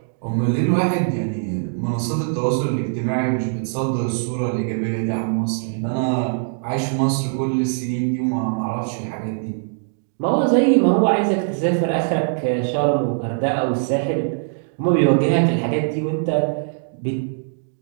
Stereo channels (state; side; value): silent; left; digital silence